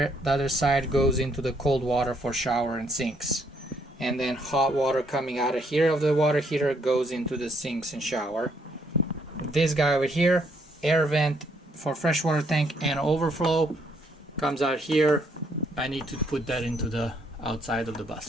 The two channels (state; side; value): normal; both; correlation 0.70